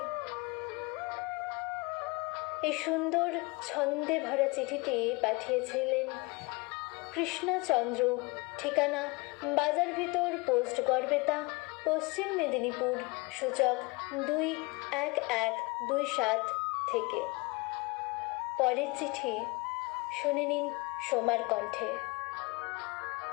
এই সুন্দর ছন্দে ভরা চিঠিটি পাঠিয়েছিলেন কৃষ্ণচন্দ্র। ঠিকানা বাজার ভিতর, পোস্ট গড়বেতা, পশ্চিম মেদিনীপুর, সূচক 21127 থেকে। পরের চিঠি শুনে নিন সোমার কণ্ঠে।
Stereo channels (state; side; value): quieter; right; 26.3 dB